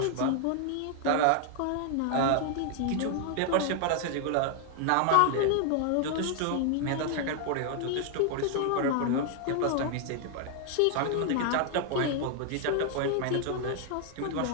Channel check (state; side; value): different; both; correlation 0.00